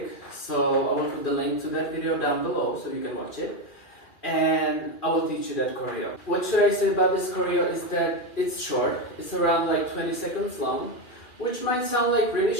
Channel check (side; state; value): right; late; 2.4 ms